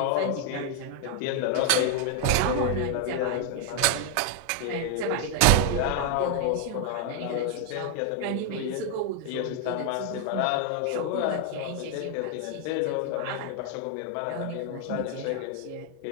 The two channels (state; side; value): different; both; correlation 0.00